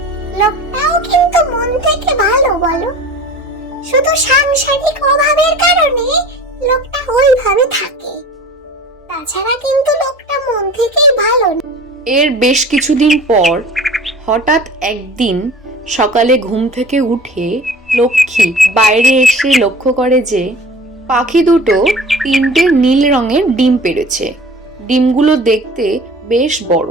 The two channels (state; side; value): normal; both; correlation 0.41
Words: লোকটাও কিন্তু মন থেকে ভালো, বলো? শুধু সাংসারিক অভাবের কারণে লোকটা ওইভাবে থাকে, তাছাড়া কিন্তু লোকটা মন থেকেই ভালো। এর বেশ কিছুদিন পর হঠাৎ একদিন সকালে ঘুম থেকে উঠে লক্ষ্মী বাইরে এসে লক্ষ্য করে যে পাখি দুটো 3টে নীল রঙের ডিম পেড়েছে। ডিমগুলো দেখতে বেশ বড়।